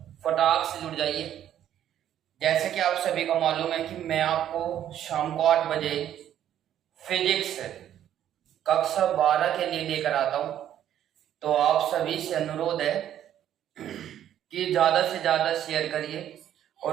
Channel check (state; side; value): quieter; left; 10.9 dB